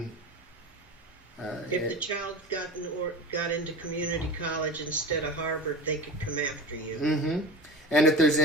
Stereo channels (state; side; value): normal; both; correlation 0.32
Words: if the child got into community college instead of Harvard, they could come after you. Mm-hmm. And if there's